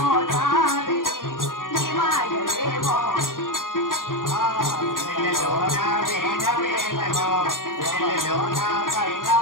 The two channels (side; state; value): right; late; 0.90 ms